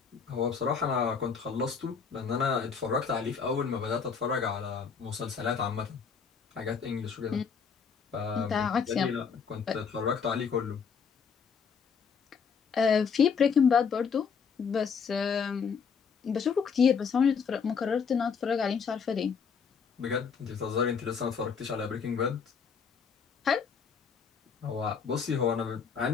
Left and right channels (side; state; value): right; quieter; 6.1 dB